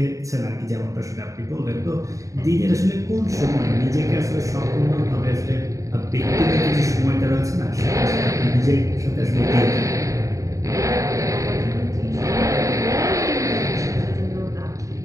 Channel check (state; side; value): late; left; 0.16 ms